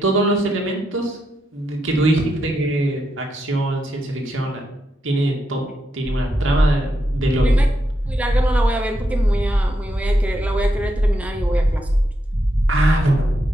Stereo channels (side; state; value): both; normal; correlation 0.82